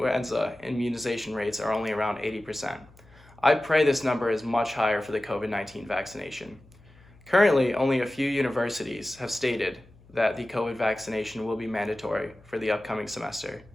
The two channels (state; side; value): noise; left; hum, 26 dB below the sound